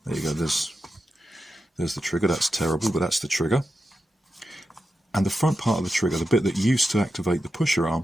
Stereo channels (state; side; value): normal; both; correlation 0.89